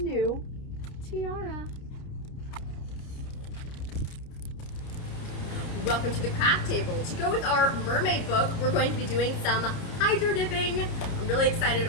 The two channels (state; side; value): late; right; 30 ms